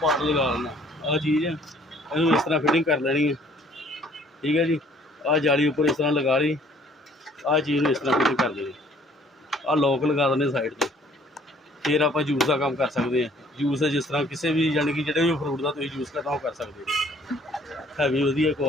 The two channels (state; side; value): normal; both; correlation 0.59